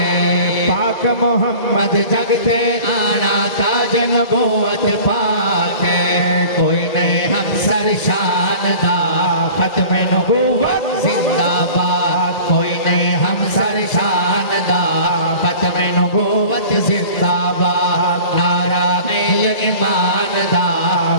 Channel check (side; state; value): right; late; 1.9 ms